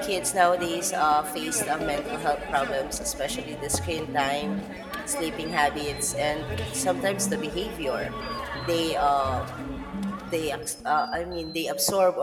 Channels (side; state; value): both; identical; correlation 1.00